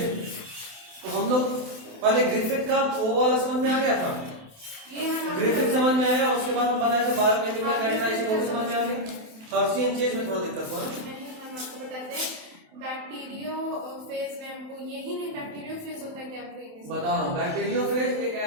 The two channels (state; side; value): late; left; 28 ms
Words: तो हम लोग पहले ग्रिफिथ का वो वाला समझ में आ गया था, ग्रिफिथ समझ में आया, उसके बाद हम बनाए थे बायोकेमिकल कैरेक्टराइजेशन, वो भी समझ में आ गई। हर्शी एंड चेज में थोड़ा दिक्कत हुआ ना। हम आपको बताते हैं बैक्टीरियोफेज में हमको यही नहीं, बैक्टीरियोफेज होता है क्या आपको बता रहा हूँ। बैक्टीरियोफेज एक